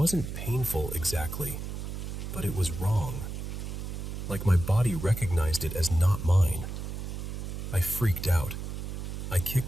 painful exactly, but it was wrong. Like my body recognized it as not mine. I freaked out. I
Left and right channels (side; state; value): right; noise; hum, 6 dB below the sound